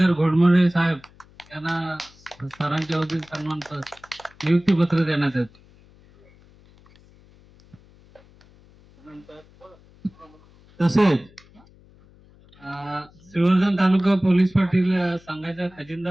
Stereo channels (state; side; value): noise; left; hum, 27 dB below the sound